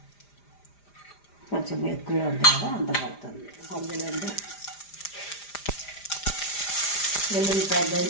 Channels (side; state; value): right; late; 5.0 ms